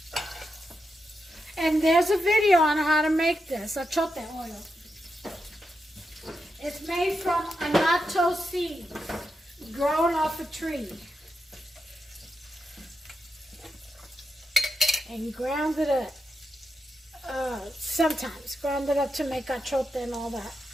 And there's a video on how to make this, achote oil. It's made from annatto seeds grown off a tree. And ground it up. Sometimes ground it up to make achote and all that.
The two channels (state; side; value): normal; both; correlation 0.86